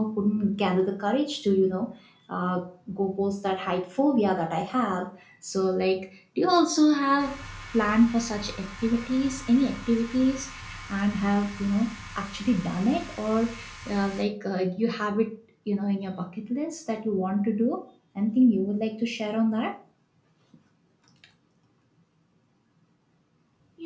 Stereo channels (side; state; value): both; identical; correlation 1.00